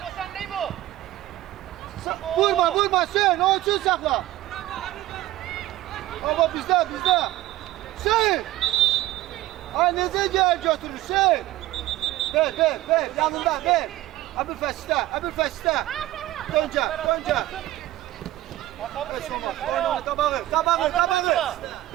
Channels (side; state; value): left; quieter; 15.7 dB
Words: O sen değil bu. Vurma Hüseyin, o için sakla. Ama bizde. Hüseyin. Ay necə gel götür Hüseyin. Ver, yanında ver. Əbülfəz istə. Döncə. Heç olmaz, oyna, qabağı.